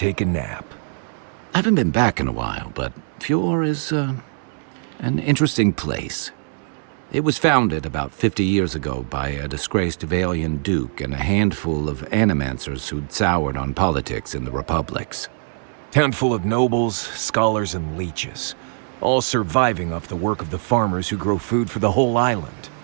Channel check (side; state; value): left; silent; 64 dB below the other